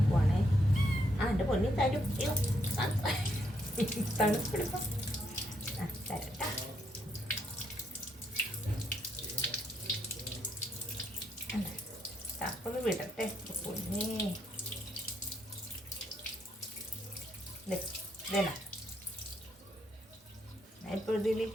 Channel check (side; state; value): both; normal; correlation 0.75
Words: എൻ്റെ പൊന്നി തരും. അയ്യോ തണുപ്പെടുക്കാം. തരട്ടാ. തപ്പൊന്ന് വിടട്ടെ പൊന്നേ. ഇതേനാ ഞാൻ ഇപ്പോൾ ഇതിൽ